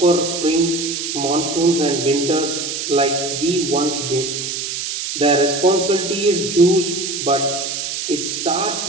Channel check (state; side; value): noise; right; hiss, 4 dB below the sound